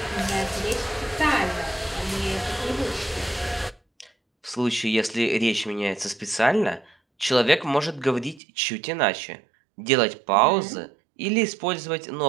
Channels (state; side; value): drops out; left; at 8.4 s